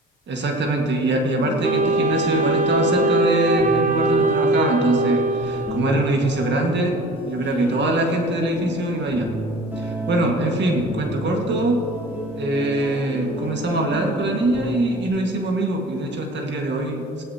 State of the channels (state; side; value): normal; both; correlation 0.42